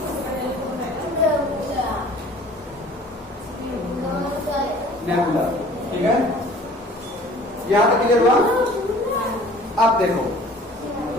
नेबुला, ठीक है, यहाँ तक क्लियर हुआ। अब देखो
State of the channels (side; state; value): both; normal; correlation 0.49